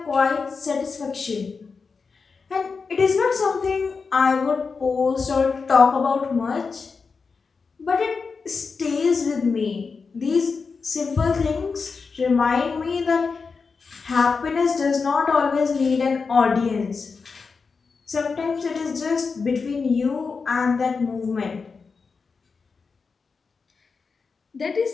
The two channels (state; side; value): quieter; right; 4.9 dB